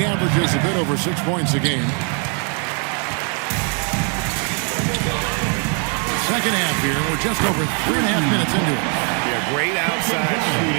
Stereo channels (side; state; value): left; quieter; 38.8 dB